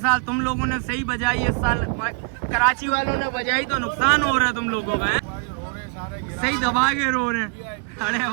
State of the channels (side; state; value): left; quieter; 34.0 dB